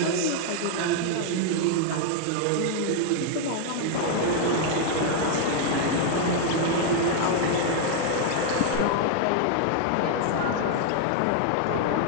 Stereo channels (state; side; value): different; both; correlation 0.00